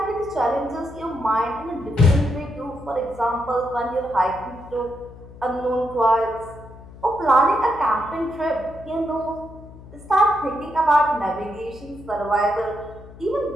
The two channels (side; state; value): left; noise; hum, 18 dB below the sound